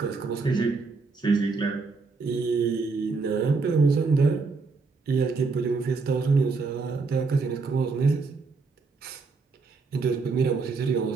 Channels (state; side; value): quieter; left; 4.3 dB